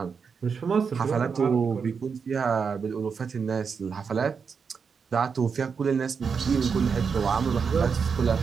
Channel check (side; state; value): left; quieter; 5.9 dB